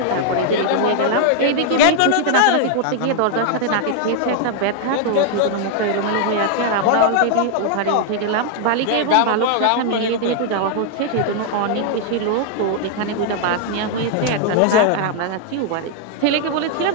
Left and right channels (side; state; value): both; different; correlation 0.00